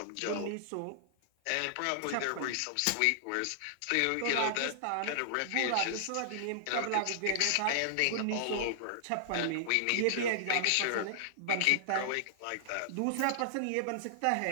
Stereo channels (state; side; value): different; both; correlation -0.01